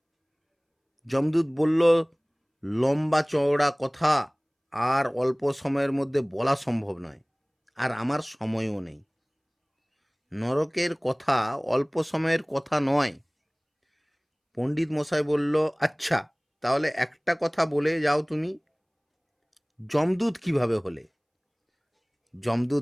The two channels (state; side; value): identical; both; correlation 1.00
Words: যমদূত বলল, লম্বা চওড়া কথা আর অল্প সময়ের মধ্যে বলা সম্ভব নয়, আর আমার সময়ও নেই। নরকের কথা অল্প সময়ের কথা নয়। পণ্ডিত মশাই বলল, আচ্ছা তাহলে একটা কথা বলে যাও তুমি, যমদূত কিভাবে হলে?